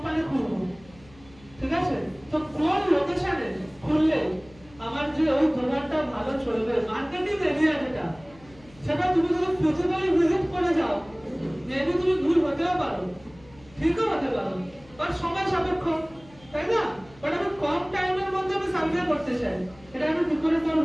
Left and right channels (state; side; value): noise; left; hum, 25 dB below the sound